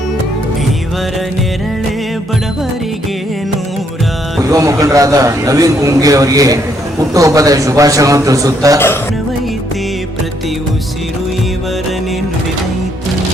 ಇವರ ನೆರಳೆ ಬಡವರಿಗೆ ನೂರ. ಯುವ ಮುಖಂಡರಾದ ನವೀನ್ ಗುಂಗಿ ಅವರಿಗೆ ಹುಟ್ಟುಹಬ್ಬದ ಶುಭಾಶಯವನ್ನು ತಿಳಿಸುತ್ತಾ ಪ್ರತಿ ಉಸಿರು ಇವರನ್ನೇ ನುಡಿದೈತಿ.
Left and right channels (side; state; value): both; normal; correlation 0.72